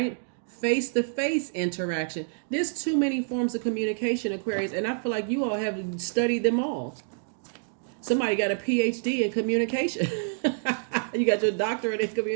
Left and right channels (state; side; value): silent; left; digital silence